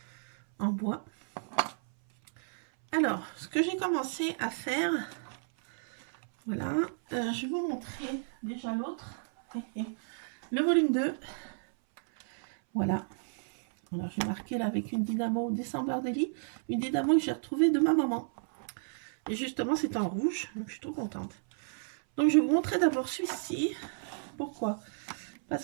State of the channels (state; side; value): silent; left; 56 dB below the other